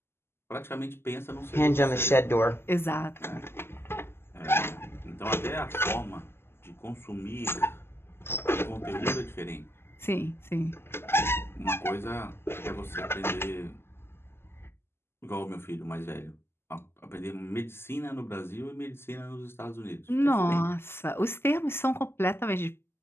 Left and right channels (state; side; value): late; right; 0.12 ms